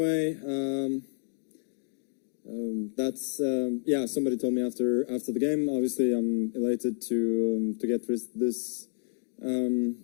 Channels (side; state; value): right; silent; 58 dB below the other